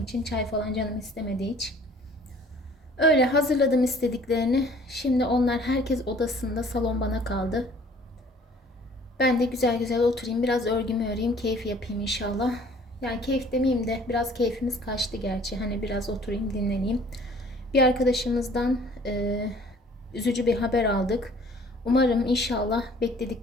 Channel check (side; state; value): both; normal; correlation 0.53